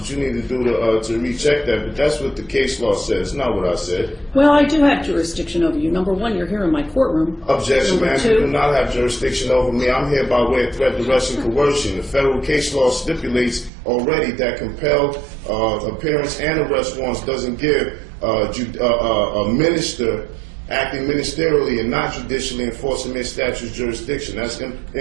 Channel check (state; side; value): drops out; left; at 13.7 s